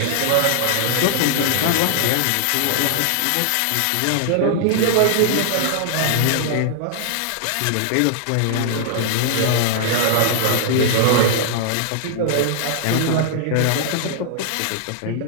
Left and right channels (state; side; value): different; both; correlation -0.01